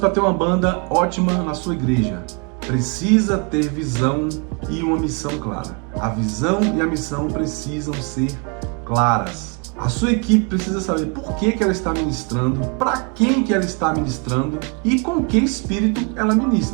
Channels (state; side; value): quieter; left; 35.0 dB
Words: ter uma banda ótima na sua igreja. Precisa ter visão e uma missão clara. A visão e a missão precisam ser claras. A sua equipe precisa saber por que ela está ministrando, para quem que ela está ministrando e com que espírito ela